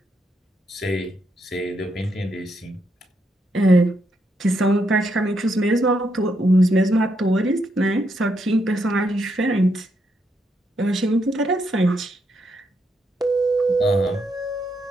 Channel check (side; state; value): both; normal; correlation 0.79